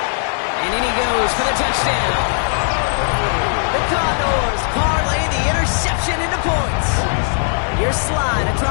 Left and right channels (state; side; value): silent; right; digital silence